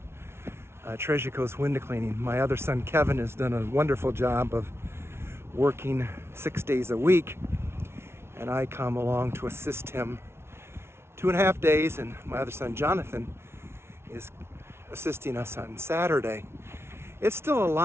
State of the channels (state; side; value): late; left; 0.12 ms